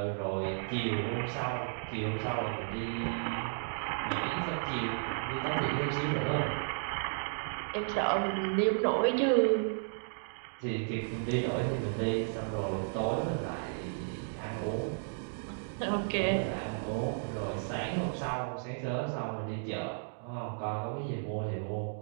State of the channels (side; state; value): left; silent; digital silence